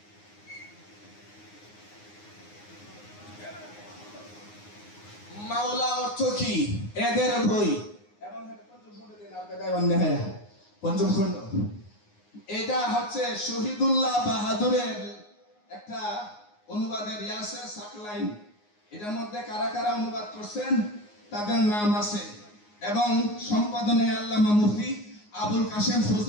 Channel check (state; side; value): late; right; 9.6 ms